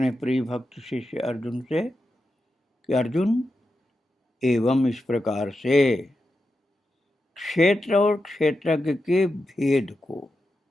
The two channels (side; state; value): both; normal; correlation 0.89